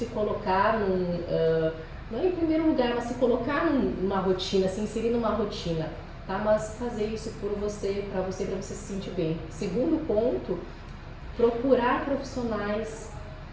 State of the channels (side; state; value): both; identical; correlation 1.00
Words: colocar não em primeiro lugar, mas se colocar numa rotina, se inserir numa rotina, tá? Mas fazer isso por você, para você se sentir bem. Segundo ponto, procurar profissionais